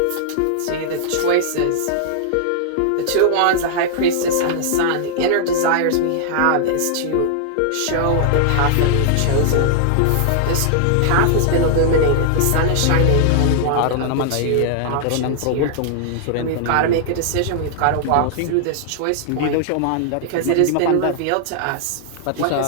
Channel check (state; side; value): different; both; correlation -0.01